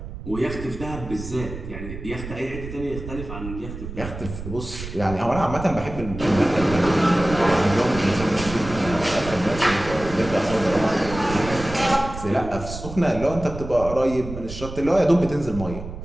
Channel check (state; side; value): noise; right; rumble, 10 dB below the sound